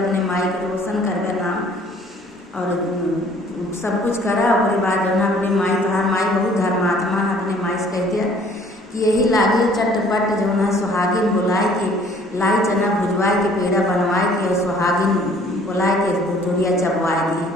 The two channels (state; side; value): normal; both; correlation 0.56